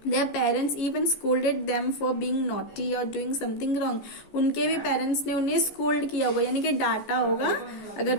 Their parents even scolded them for being naughty or doing something wrong. उनके भी पेरेंट्स ने उन्हें स्कोल्ड किया होगा, यानी कि डांटा होगा अगर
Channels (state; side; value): late; right; 14 ms